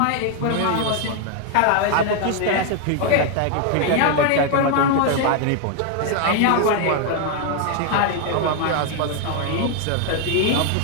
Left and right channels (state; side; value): different; both; correlation 0.00